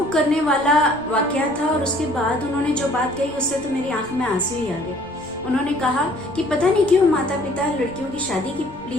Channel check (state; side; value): normal; both; correlation 0.57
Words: करने वाला वाकया था। और उसके बाद उन्होंने जो बात कही उससे तो मेरी आंख में आंसू ही आ गए। उन्होंने कहा कि पता नहीं क्यों माता पिता लड़कियों की शादी के